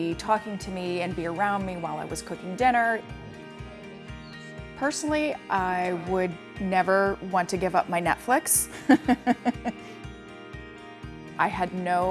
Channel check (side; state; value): both; identical; correlation 1.00